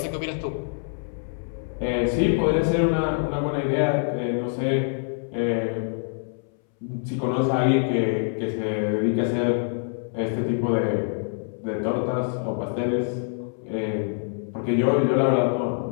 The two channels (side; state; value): right; silent; 62 dB below the other